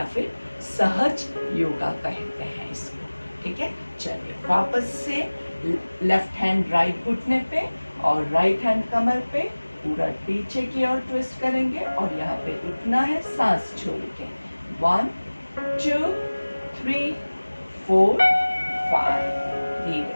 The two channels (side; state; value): both; inverted; correlation -1.00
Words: फिर सहज योगा कहते हैं इसको, ठीक है। चलिए वापस से लेफ्ट हैंड राइट घुटने पे और राइट हैंड कमर पे पूरा पीछे की ओर ट्विस्ट करेंगे और यहाँ पे उठना है सांस छोड़ के। 1 2 3 4 5।